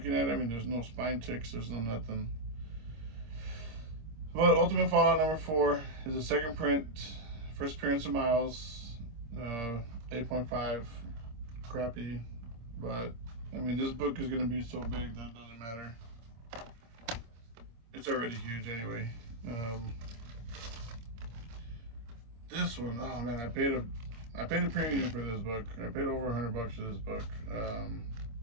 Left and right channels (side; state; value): left; late; 26 ms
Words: at it, I mean, there's no spine ticks, there's no nothing. But Ultimate Fallout number 4 is a second print, first appearance of Miles, 8.5, crappy. But I mean, this book is gonna be so big that it doesn't matter. It's already huge anyway. This one, oh man, I paid a premium for this book. I paid over $100 for this book.